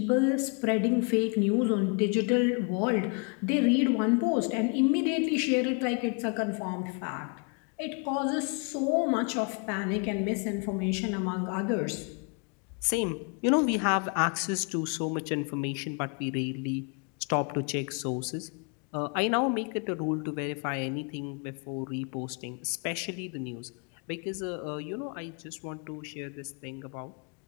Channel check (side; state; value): right; quieter; 36.9 dB